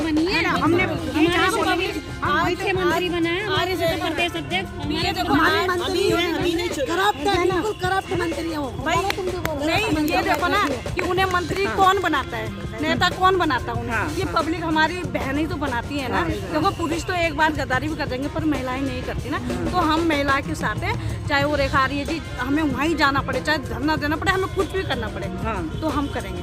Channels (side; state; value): both; identical; correlation 1.00